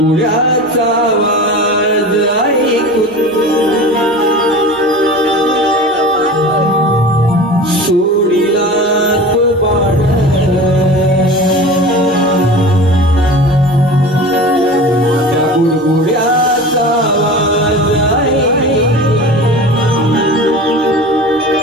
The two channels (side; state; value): both; normal; correlation 0.35